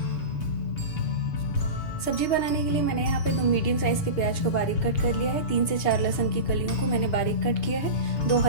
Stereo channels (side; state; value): right; late; 6.9 ms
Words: सब्जी बनाने के लिए मैंने यहाँ पे 2 मीडियम साइज के प्याज को बारीक कट कर लिया है। 3 से 4 लहसुन की कलियों को मैंने बारीक कट किया है। 2